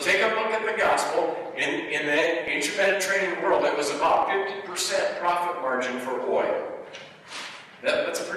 take a look at the gospel. In the ancient Mediterranean world, it was about 50% profit margin for oil. That's a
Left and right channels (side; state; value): both; identical; correlation 1.00